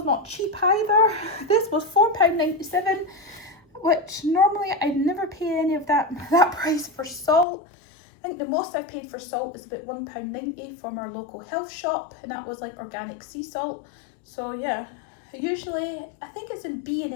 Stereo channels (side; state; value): right; drops out; at 7.5 s